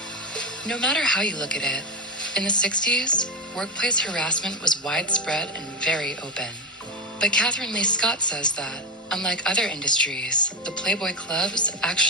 No matter how you look at it, in the 60s, workplace harassment was widespread and very open. But Catherine Lee Scott says that, unlike other industries, the Playboy clubs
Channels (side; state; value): both; normal; correlation 0.14